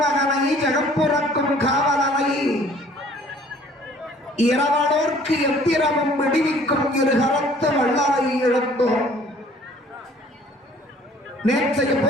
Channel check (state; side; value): normal; both; correlation 0.55